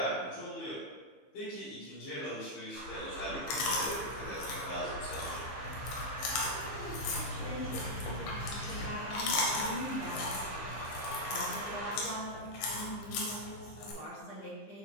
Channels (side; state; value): right; late; 15 ms